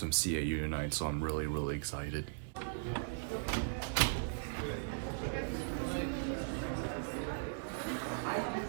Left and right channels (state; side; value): silent; left; digital silence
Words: CAU tonight, so I'm really excited.